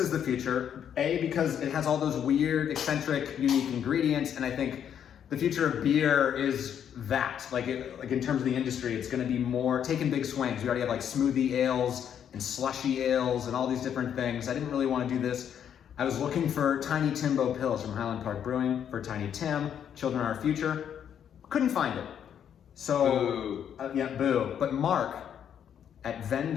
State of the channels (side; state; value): right; quieter; 8.9 dB